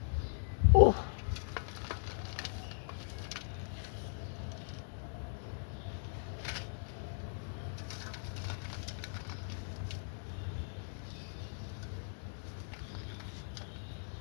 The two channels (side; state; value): right; silent; digital silence